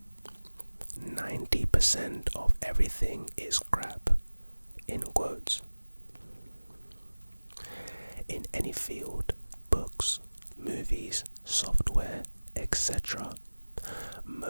90% of everything is crap, in quotes. In any field, books, movies, software, etc.,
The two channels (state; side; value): inverted; both; correlation -1.00